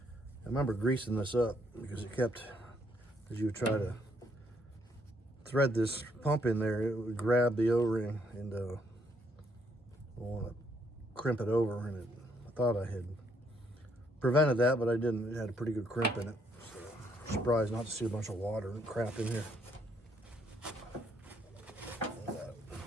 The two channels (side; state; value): both; normal; correlation 0.71